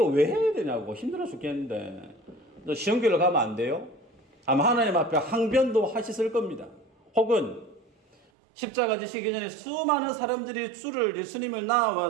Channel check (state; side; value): drops out; left; at 8.2 s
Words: 왜 해야 되냐고 힘들어 죽겠는데 쉬운 길로 가면 안 돼요? 아마 하나님 앞에 항변도 하셨을 겁니다. 혹은 십자가 지시기 전에 수많은 사람들이 주를 예수님을